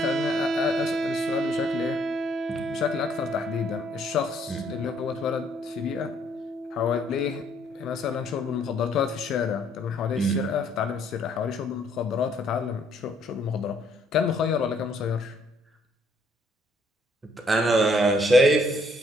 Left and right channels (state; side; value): normal; both; correlation 0.66